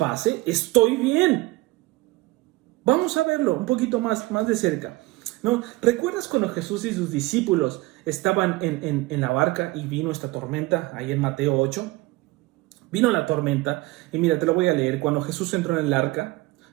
estoy bien. Vamos a verlo un poquito más de cerca, ¿no? ¿Recuerdas cuando Jesús y sus discípulos estaban en la barca y vino esta tormenta ahí en Mateo 8? Vino la tormenta y mira, te lo voy a leer. Cuando Jesús entró en el arca,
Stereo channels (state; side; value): quieter; left; 20.5 dB